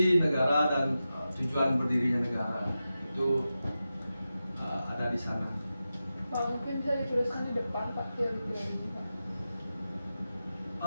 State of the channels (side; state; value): both; inverted; correlation -0.92